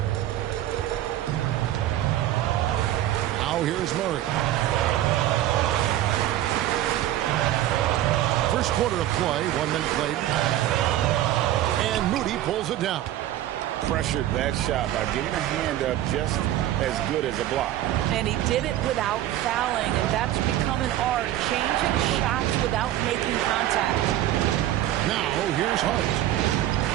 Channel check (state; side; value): quieter; left; 13.3 dB